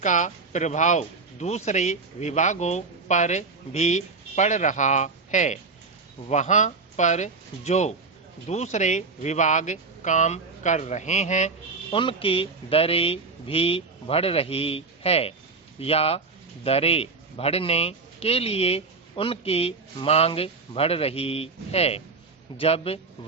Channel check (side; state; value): left; quieter; 4.2 dB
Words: प्रभाव दूसरे विभागों पर भी पड़ रहा है। वहाँ पर जो दूसरे विभाग काम कर रहे हैं उनकी दरें भी बढ़ रही है या दरें बढ़ने के लिए उनकी मांग बढ़ रही है। जब